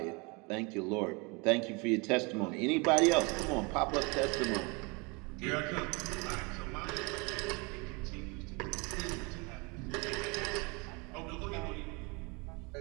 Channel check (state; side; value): quieter; left; 29.0 dB